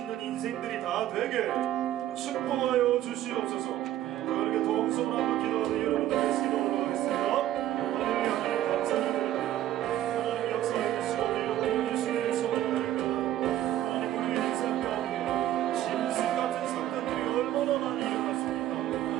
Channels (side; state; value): left; quieter; 12.9 dB